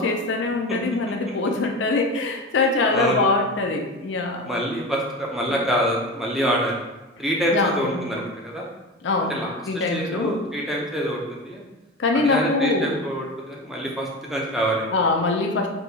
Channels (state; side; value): normal; both; correlation 0.26